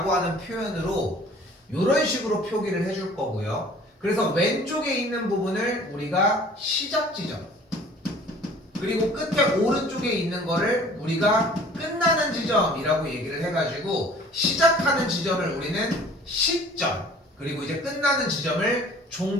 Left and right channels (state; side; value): normal; both; correlation 0.50